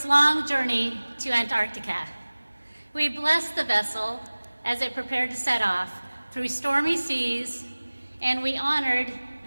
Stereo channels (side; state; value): both; inverted; correlation -1.00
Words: long journey to Antarctica. We blessed the vessel as it prepared to set off through stormy seas, and we honored